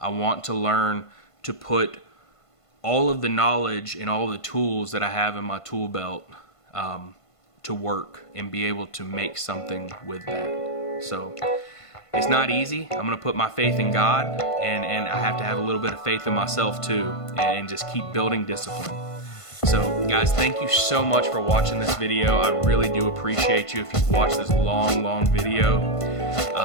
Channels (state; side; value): late; right; 1.5 ms